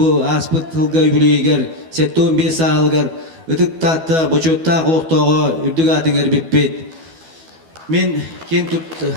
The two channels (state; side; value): late; left; 12 ms